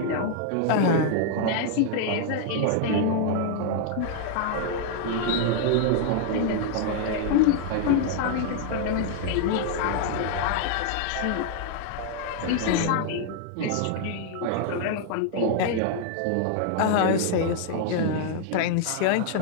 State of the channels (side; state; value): both; different; correlation 0.00